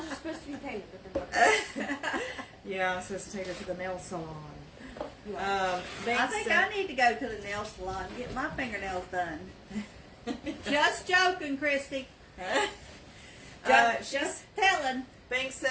are supposed to be painted different. Yeah, I'm supposed to take her to the nail salon. I Banks think said- I need to go to the nail salon and get my fingernails done. Just joking, Christy. Just telling. Banks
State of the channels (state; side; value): identical; both; correlation 1.00